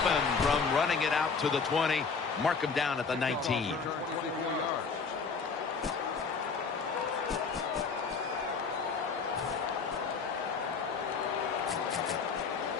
from running it out to the 20. Mark him down at the 19.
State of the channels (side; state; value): right; quieter; 5.2 dB